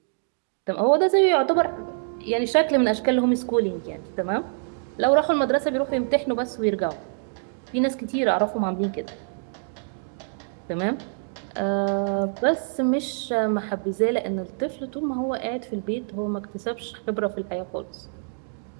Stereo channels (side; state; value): left; silent; digital silence